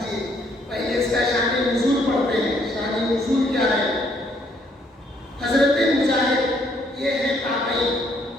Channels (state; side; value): normal; both; correlation 0.68